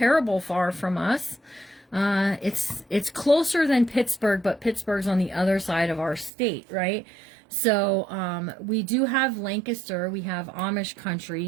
far from us. It's closer than Pittsburgh, but Pittsburgh's on the other side of our state, right? So we do have Lancaster. We have Amish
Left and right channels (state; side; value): drops out; left; at 6.3 s